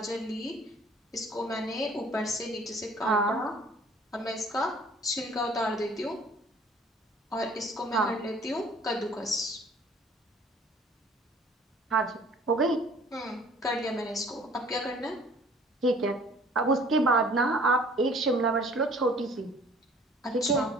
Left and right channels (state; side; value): normal; both; correlation 0.53